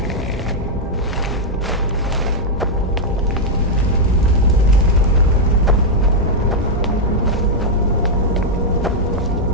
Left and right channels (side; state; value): both; normal; correlation -0.03